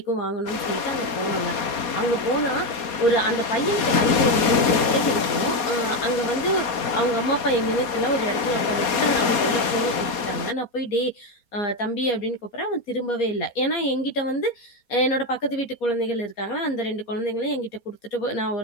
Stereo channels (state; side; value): late; right; 4.2 ms